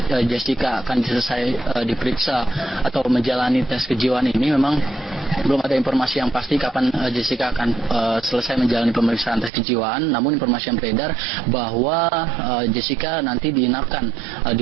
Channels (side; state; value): left; drops out; at 9.5 s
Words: Jessica akan selesai diperiksa atau menjalani tes kejiwaan ini, memang belum ada informasi yang pasti kapan Jessica akan selesai menjalani pemeriksaan tes kejiwaan. Namun informasi yang beredar bahwa Jessica nanti diinapkan